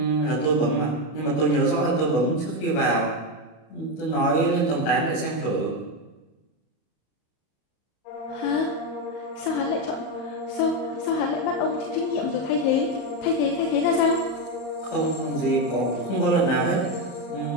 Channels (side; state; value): right; late; 34 ms